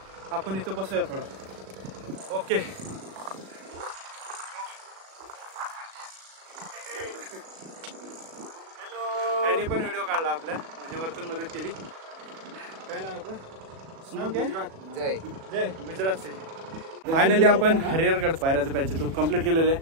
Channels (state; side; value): late; left; 37 ms